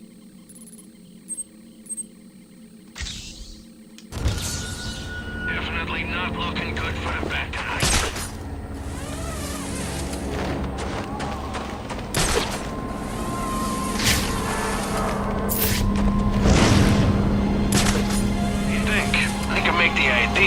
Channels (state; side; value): identical; both; correlation 1.00